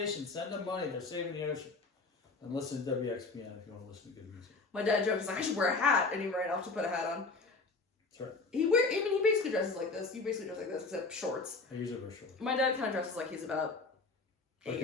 send them money. They're saving the ocean. And listen to WXPN if you want to listen to good music. My dad jokes, he's like, I should wear a hat. And he ran off to put a hat on. That's right. He basically dresses like this. He basically dresses like this, except shorts. I usually wear shorts. My dad kind of dresses like he's about 8 Like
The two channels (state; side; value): quieter; right; 3.8 dB